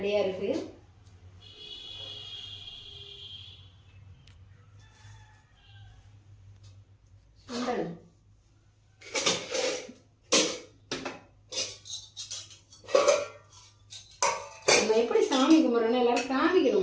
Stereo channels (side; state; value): both; identical; correlation 1.00